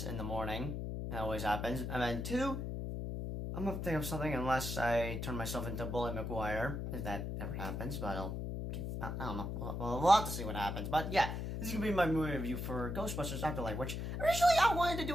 in the morning. That always happens. And then two, I'm gonna think of something unless I turn myself into Bully McGuire, if that ever happens, but I don't know. We'll have to see what happens. But yeah, this is gonna be my movie review for Ghostbusters Afterlife, which originally I wanted to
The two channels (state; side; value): noise; left; hum, 4 dB below the sound